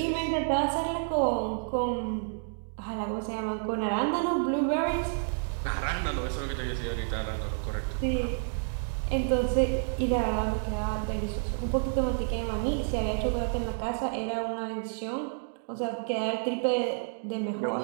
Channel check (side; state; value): left; silent; digital silence